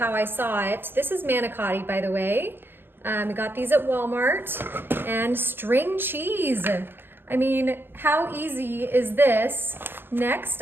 I saw it. This is manicotti, by the way. I got these at Walmart. And string cheese. I mean, how easy is this?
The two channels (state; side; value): late; left; 0.098 ms